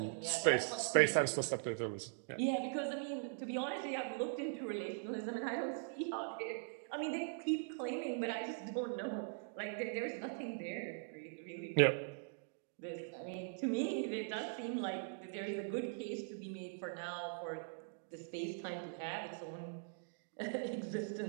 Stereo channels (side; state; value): left; silent; digital silence